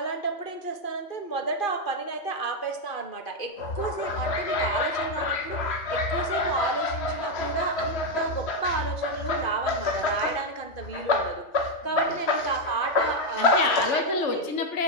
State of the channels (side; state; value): right; late; 2.5 ms